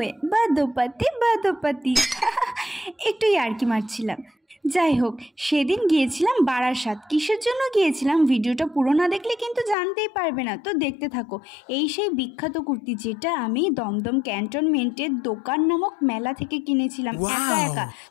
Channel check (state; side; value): drops out; right; at 9.8 s